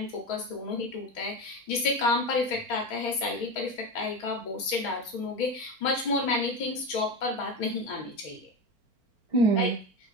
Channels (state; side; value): late; right; 4.4 ms